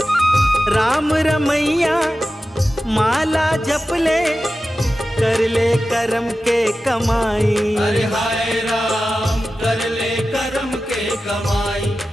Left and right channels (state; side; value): normal; both; correlation 0.94